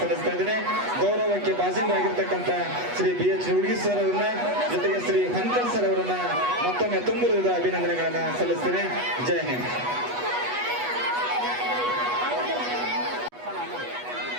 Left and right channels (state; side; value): late; left; 8.2 ms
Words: ಸಲ್ಲಿಸ್ತಾ ಇದ್ದೇನೆ. ಗೌರವಕ್ಕೆ ಭಾಜನರಾಗಿರ್ತಕ್ಕಂಥ ಶ್ರೀ BH ನಿರ್ಗುಡಿ ಸರ್ ಅವರನ್ನ ಜೊತೆಗೆ ಶ್ರೀ ಹಂಕಲ್ ಸರ್ ಅವರನ್ನ ಮತ್ತೊಮ್ಮೆ ತುಂಬ ಹೃದಯದ ಅಭಿನಂದನೆಗಳನ್ನ ಸಲ್ಲಿಸ್ತೇನೆ. ಜೈ ಹಿಂದ್.